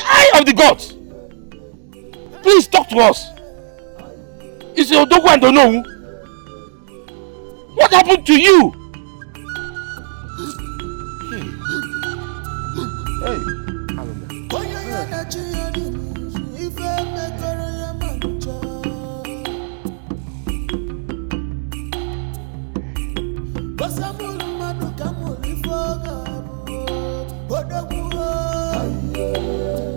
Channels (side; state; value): left; silent; 67 dB below the other